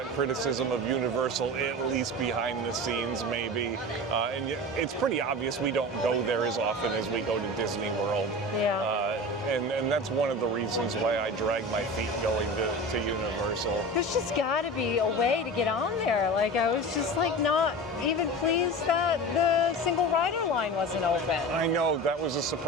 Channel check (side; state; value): both; normal; correlation 0.31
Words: criticism of Universal at least behind the scenes, maybe. And it's pretty obvious we don't go there as often as we go to Disney World. Yeah. And that's one of the reasons why I drag my feet going to Universal. There's just got to be a way to get on there. Like, I was just like not even pleased that the single rider line wasn't open. I know, that was a